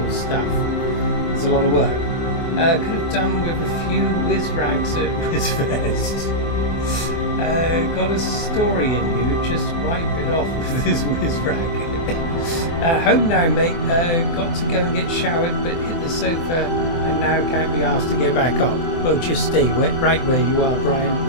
stuff. There's a lot of work. Could have done with a few whiz rags at Whizfest. Got a story in you, just wipe it off with this whiz rag. Home now, mate. Got to go and get showered, but hit the sofa and now can't be asked to get back up. Well, just stay right where you are, Brian,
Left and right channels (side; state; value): right; late; 24 ms